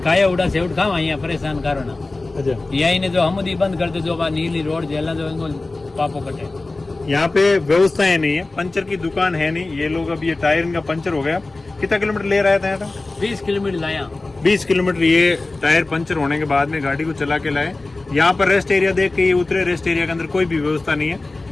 खाया उड़ा से उठ खावा यहाँ परेशान करो ना। अच्छा, यही ने जो हमदी बंद कर दो, जो बात नीली रोड जेला जो इनको पापो कटे। यहाँ पे व्यवस्थाएं नहीं है, पंचर की दुकान है नहीं। ये लोग अब ये टायर इनका पंचर हो गया, कितना किलोमीटर ले रहा था यहाँ? 20 किलोमीटर लाया। 20 किलोमीटर ये टायर पंचर होने के बाद में गाड़ी को चला के लाए। यहाँ पर रेस्ट एरिया देख के ये उतरे, रेस्ट एरिया के अंदर कोई भी व्यवस्था नहीं है,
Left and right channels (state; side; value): quieter; right; 3.2 dB